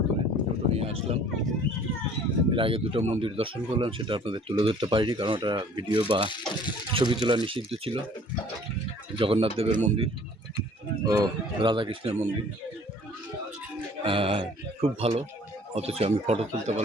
দূরে টোটো নিয়ে আসলাম। এর আগে দুটো মন্দির দর্শন করলাম, সেটা আপনাদের তুলে ধরতে পারিনি কারণ ওটা ভিডিও বা ছবি তোলা নিষিদ্ধ ছিল। জগন্নাথ দেবের মন্দির ও রাধাকৃষ্ণের মন্দির খুব ভালো, অথচ আমি ফটো তুলতে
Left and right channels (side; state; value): both; normal; correlation 0.53